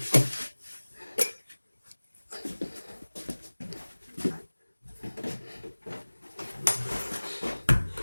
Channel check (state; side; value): inverted; both; correlation -1.00